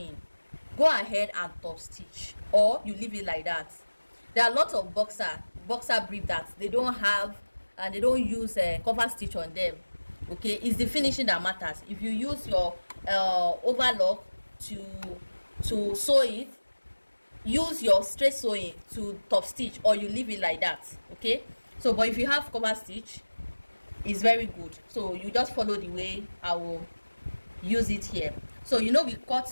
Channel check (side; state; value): both; inverted; correlation -1.00